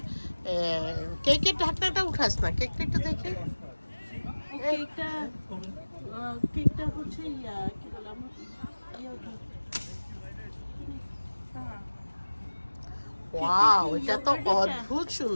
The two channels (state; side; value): inverted; both; correlation -1.00